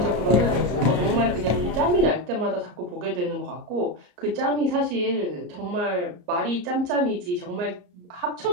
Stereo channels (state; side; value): late; left; 34 ms